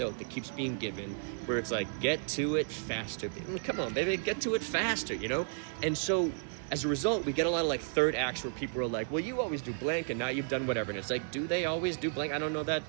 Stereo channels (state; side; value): silent; left; digital silence